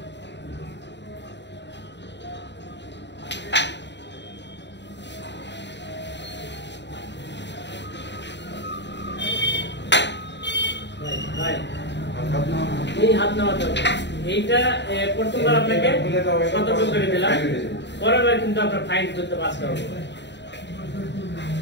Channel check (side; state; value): right; late; 0.51 ms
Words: এই হাত নেওয়াতে হবে, এইটা প্রথমবার আপনাকে সতর্ক করে দিলাম, পরের বার কিন্তু আপনার ফাইন করতে পাস করবো।